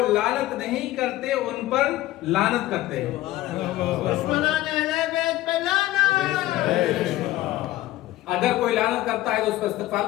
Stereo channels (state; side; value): quieter; right; 15.8 dB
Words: لعنت نہیں کرتے ان پر لعنت کرتے ہیں۔ اگر کوئی لعنت کرتا ہے تو اس پر